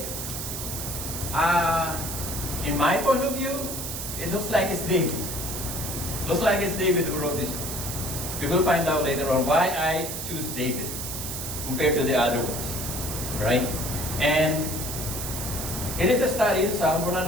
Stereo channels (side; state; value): right; noise; hiss, 5 dB below the sound